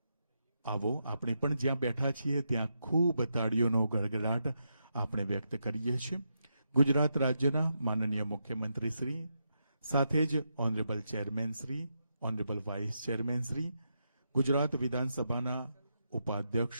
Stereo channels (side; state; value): both; inverted; correlation -0.84